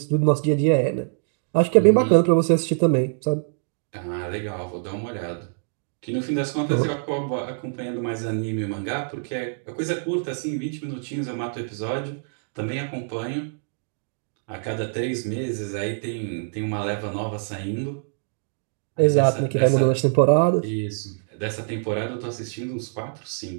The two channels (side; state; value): left; silent; digital silence